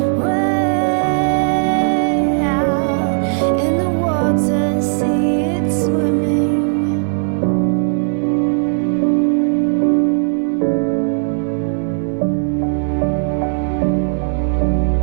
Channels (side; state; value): left; silent; 68 dB below the other